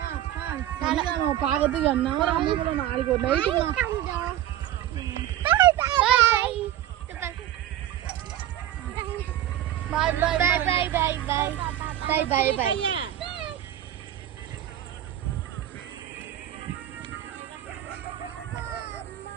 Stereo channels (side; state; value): left; quieter; 12.4 dB